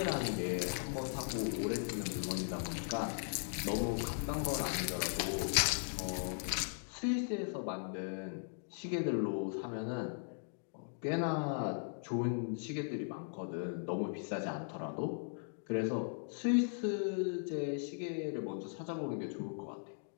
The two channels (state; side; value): silent; right; digital silence